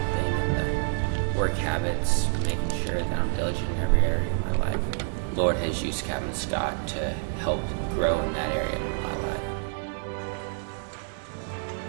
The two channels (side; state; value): left; silent; 59 dB below the other